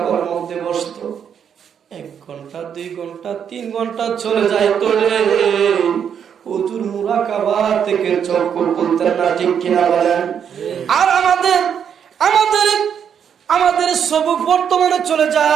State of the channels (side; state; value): left; quieter; 8.0 dB